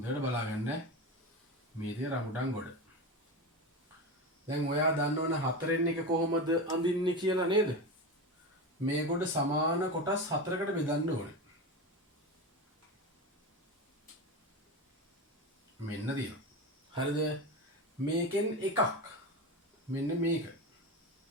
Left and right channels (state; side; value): normal; both; correlation 0.22